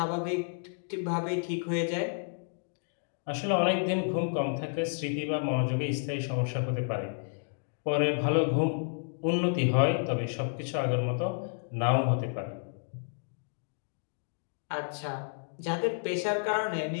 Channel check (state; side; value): silent; right; digital silence